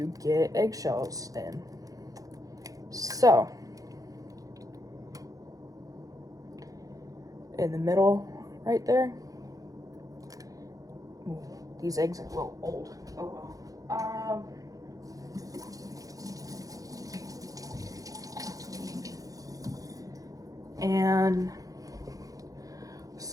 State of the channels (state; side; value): late; left; 0.17 ms